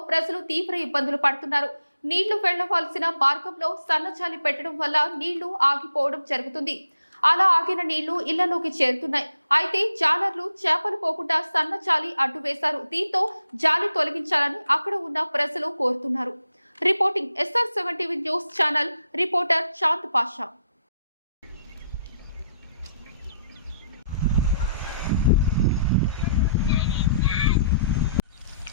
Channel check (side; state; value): both; inverted; correlation -0.75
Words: ప్రజలు తీవ్ర ఇబ్బందులు పడుతున్నారు. నీళ్లు వెళ్లవలసిన మార్గంలో సన్నజాలి పెట్టడం వల్ల నీళ్లు ఆగిపోవడం జరుగుతుంది. అలా ఆగిన నీళ్లు ఇళ్లలోకి చేరుతున్నాయి. అయితే జాలర్లు చేపలు పోకుండా సన్న జాలి అడ్డు వేశారు. దీంతో జాలి తొలగించాలని అక్కడ ఉన్న ప్రజలు కోరుతున్నారు. Reporting SR7 TV news channel, reporter Chand Pasha.